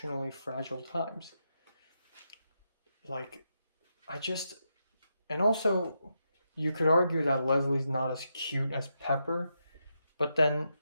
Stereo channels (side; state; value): both; inverted; correlation -0.84